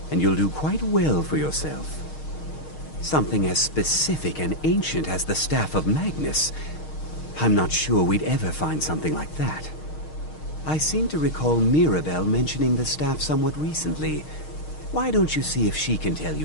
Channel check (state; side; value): late; right; 6.5 ms